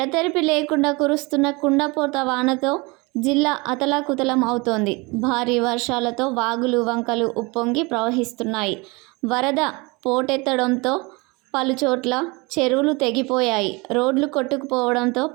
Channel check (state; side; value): quieter; left; 26.3 dB